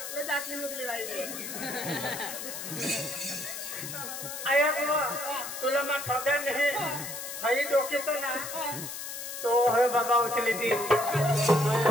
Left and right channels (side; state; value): left; noise; hiss, 7 dB below the sound